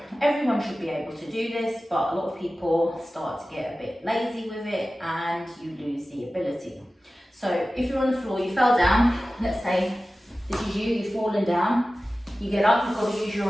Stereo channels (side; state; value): both; normal; correlation 0.96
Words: everyone should be able to do this, but a lot of people start to get a bit lazy with it and you lose the ability. So if you're on the floor, you fell down, let's say this is you, you've fallen down, you get up, you've got to use